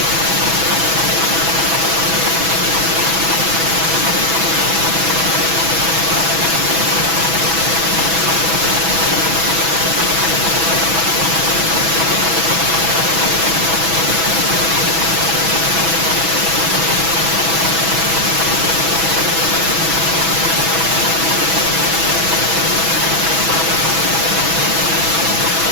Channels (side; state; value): left; late; 6.1 ms